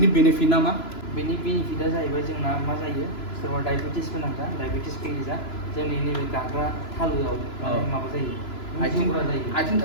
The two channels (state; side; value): late; right; 3.0 ms